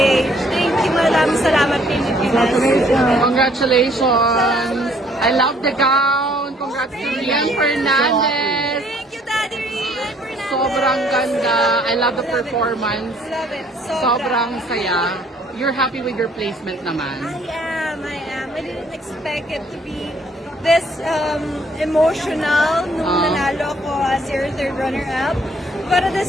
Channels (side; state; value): both; normal; correlation 0.62